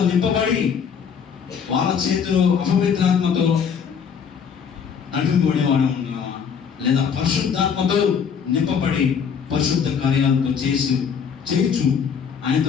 నింపబడి వాళ్ళ చేతులు అపవిత్రాత్మతో నడిపింపబడేవాడు ఉన్నామా? లేదా పరిశుద్ధాత్మతో నింపబడి పరిశుద్ధ కార్యాలతో చేయొచ్చు ఆయనతో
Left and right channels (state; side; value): quieter; right; 6.9 dB